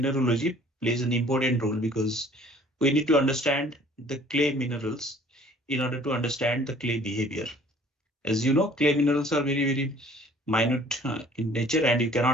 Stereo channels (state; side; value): normal; both; correlation 0.53